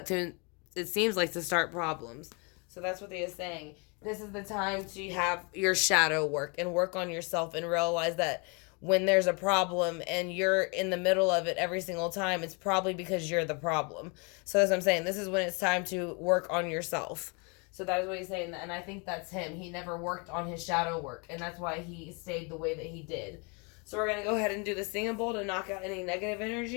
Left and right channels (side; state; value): right; quieter; 32.8 dB